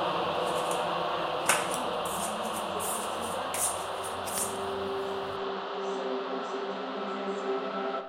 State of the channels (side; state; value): both; identical; correlation 1.00